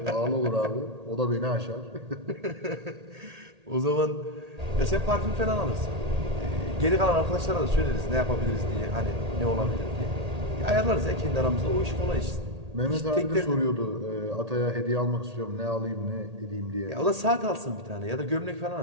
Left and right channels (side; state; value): left; late; 1.8 ms